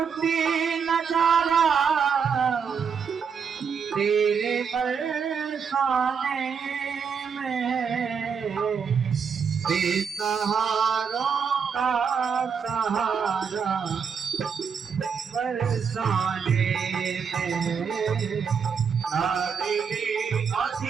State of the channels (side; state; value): left; quieter; 6.4 dB